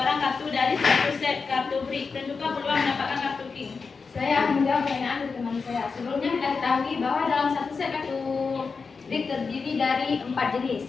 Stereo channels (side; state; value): right; quieter; 4.9 dB